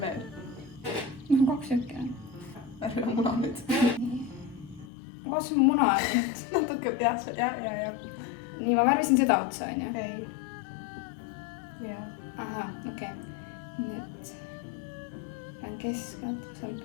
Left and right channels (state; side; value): drops out; right; at 4.9 s